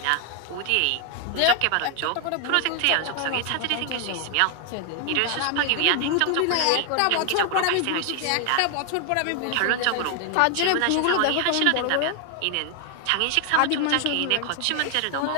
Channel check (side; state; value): both; different; correlation 0.00